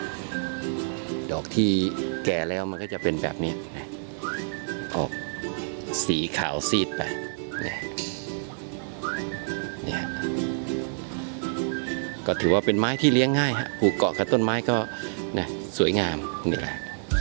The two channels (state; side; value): silent; left; 60 dB below the other